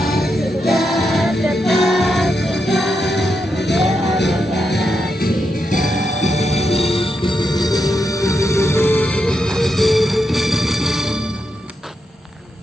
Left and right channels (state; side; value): normal; both; correlation 0.84